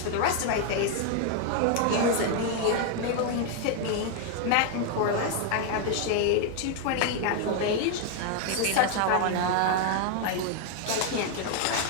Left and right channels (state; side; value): different; both; correlation 0.00